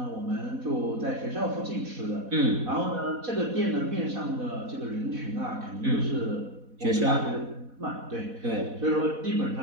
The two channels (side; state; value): left; late; 4.1 ms